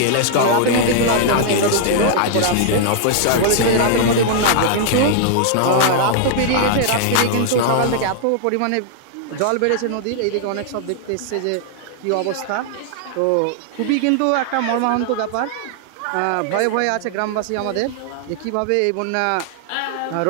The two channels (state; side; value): different; both; correlation -0.01